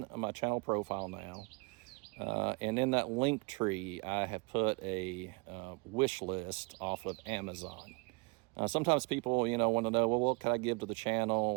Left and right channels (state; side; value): quieter; left; 28.0 dB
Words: my channel profile now. And in that link tree, I have put a wish list off of Amazon. Sometimes people, you know, want to know, well, what can I give to the channel?